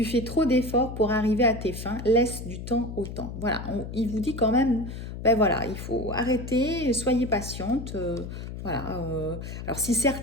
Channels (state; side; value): noise; left; hum, 8 dB below the sound